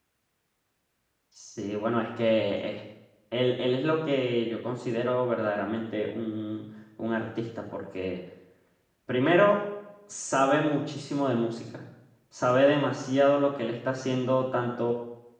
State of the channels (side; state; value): both; identical; correlation 1.00